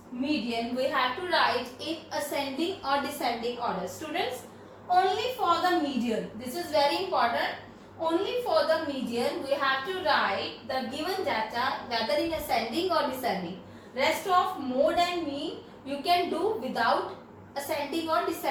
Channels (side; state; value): both; identical; correlation 1.00